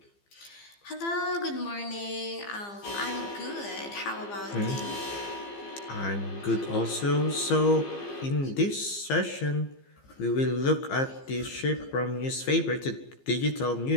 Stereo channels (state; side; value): late; right; 15 ms